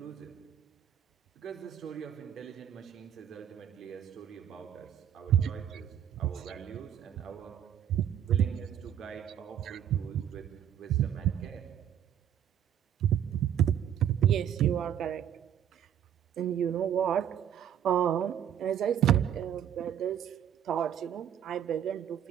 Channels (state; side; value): quieter; left; 9.8 dB